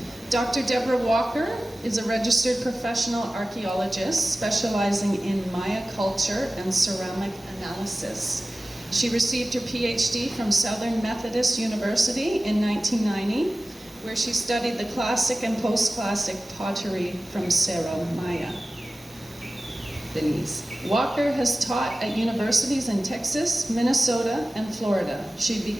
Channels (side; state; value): both; normal; correlation 0.96